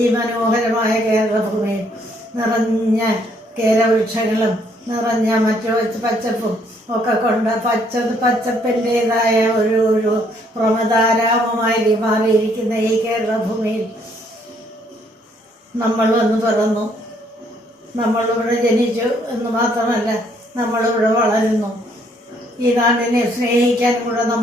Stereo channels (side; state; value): both; normal; correlation 0.67